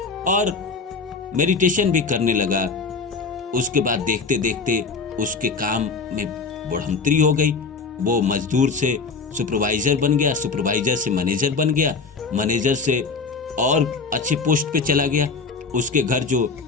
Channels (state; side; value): quieter; right; 4.5 dB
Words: और मेडिटेशन भी करने लगा। उसके बाद देखते देखते उसके काम में बढ़ोतरी हो गई। वो मजदूर से सुपरवाइजर बन गया, सुपरवाइजर से मैनेजर बन गया, मैनेजर से और अच्छे पोस्ट पे चला गया। उसके घर जो